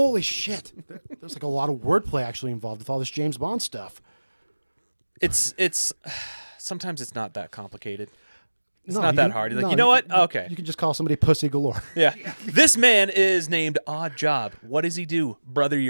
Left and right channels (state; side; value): inverted; both; correlation -1.00